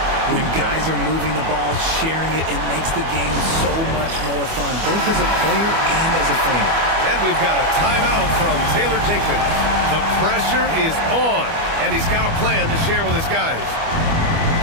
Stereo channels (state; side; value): late; left; 25 ms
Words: When guys are moving the ball, sharing it, it makes the game so much more fun, both as a player and as a fan. And we've got a timeout from Taylor Jenkins. The pressure is on, and he's got a plan to share with his guys.